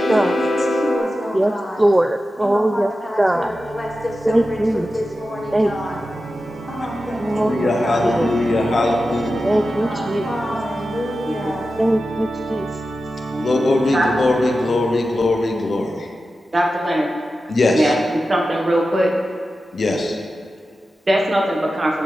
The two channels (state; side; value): normal; both; correlation 0.92